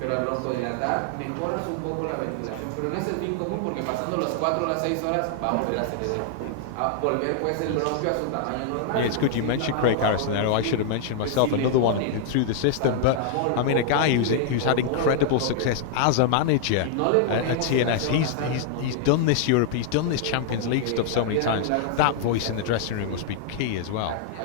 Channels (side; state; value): both; different; correlation -0.01